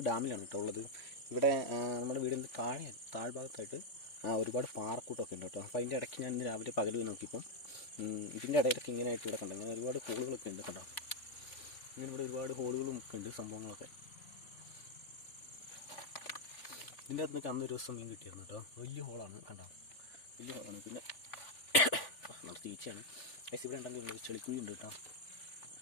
ഡാമിലാണ് കേട്ടോ ഉള്ളത്. ഇവിടെ നമ്മുടെ വീടിൻ്റെ താഴ്ഭാഗത്തായിട്ട് ഒരുപാട് പാറക്കൂട്ടമൊക്കെ ഉണ്ട് കേട്ടോ. അപ്പോൾ അതിൻ്റെ ഇടയ്ക്ക് ഞാൻ ഇന്ന് രാവിലെ പകൽ നോക്കിയപ്പോൾ ഇതിൻ്റെ ഇടയിലൊക്കെ ഇങ്ങനെ ആയിട്ട് ഇവിടെ കണ്ടു. ഇങ്ങനെ ഒരുപാട് ഹോളുകളൊക്കെ ഉണ്ട് കേട്ടോ. ഇങ്ങനെ ഇവിടെ ഒരുപാട് ഹോളുകളും ഒക്കെ ഉണ്ട്, സംഭവങ്ങളൊക്കെ. ഇതിൻ്റെ അകത്ത് നിന്നൊക്കെ അന്നൊരു ദിവസം മീൻ കിട്ടിയിരുന്നു കേട്ടോ. വലിയ ഹോളാണ് കണ്ടോ, വലിയ ഹോളാണ്. പിന്നെ നമ്മുടെ ചേച്ചിയാണ് ഗൈസ്. ഇവിടെ ഉണ്ടെങ്കിൽ ചെളിക്കുഴി ഉണ്ട് കേട്ടോ.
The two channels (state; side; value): late; right; 3.4 ms